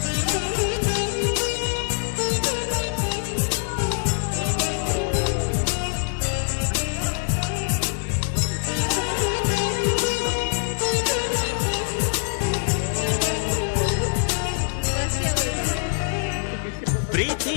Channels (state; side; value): silent; right; digital silence